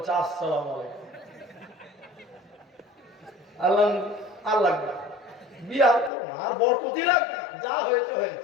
আসসালামু আলাইকুম। আল্লাহ আর লাগবে বিয়ে আর করো না, আর বরকতই লাগবে, যা হয়েছে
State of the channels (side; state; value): right; drops out; at 6.1 s